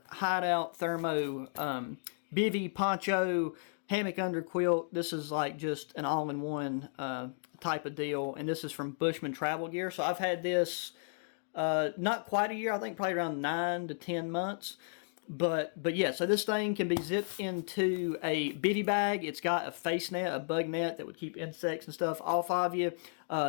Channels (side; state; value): right; silent; digital silence